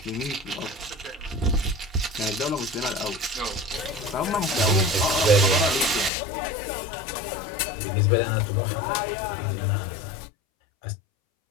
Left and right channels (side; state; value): right; drops out; at 6.1 s